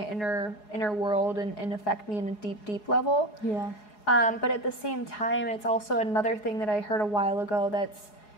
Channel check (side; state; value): right; late; 4.8 ms